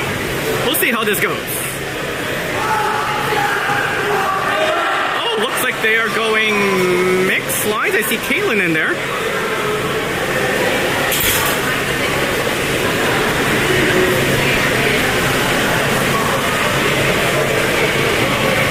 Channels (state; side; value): identical; both; correlation 1.00